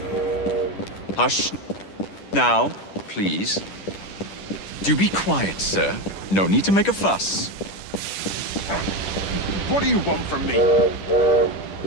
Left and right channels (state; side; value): late; right; 10 ms